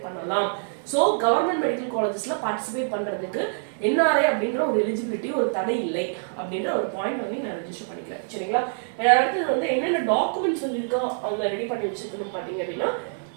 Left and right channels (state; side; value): silent; left; 56 dB below the other